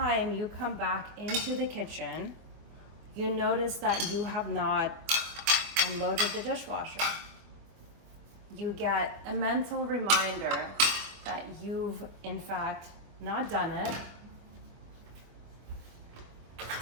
you come back into the kitchen, you notice that you have not unloaded the dishwasher. You get a mental reminder that you've in fact not done it,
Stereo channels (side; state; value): left; late; 24 ms